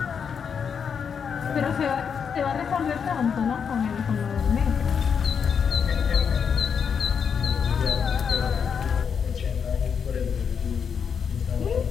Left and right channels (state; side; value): quieter; right; 6.8 dB